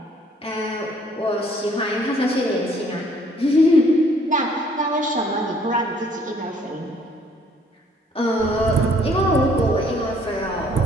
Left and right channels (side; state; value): both; normal; correlation 0.61